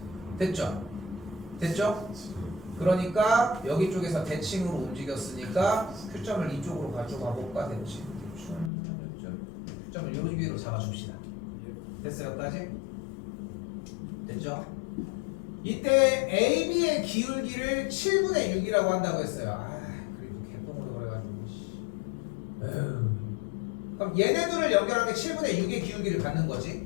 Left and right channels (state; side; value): drops out; right; at 8.7 s